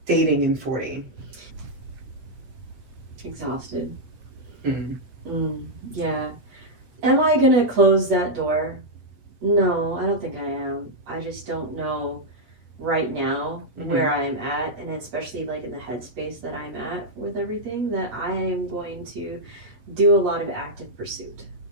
dating in 40? Exhausted. Yeah. Am I gonna close that door? No, I don't think I am. I just don't know right now where I am at, and especially like in the headspace that I'm at with everything, that I am going to do a lot of active pursuit.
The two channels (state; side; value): late; left; 8.1 ms